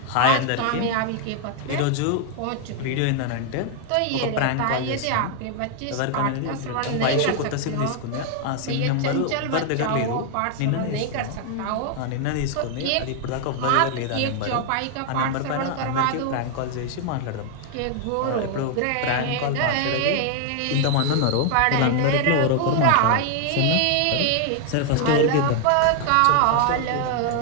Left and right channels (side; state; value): both; different; correlation 0.00